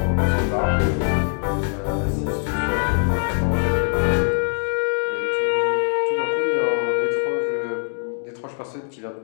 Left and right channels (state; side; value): silent; right; 64 dB below the other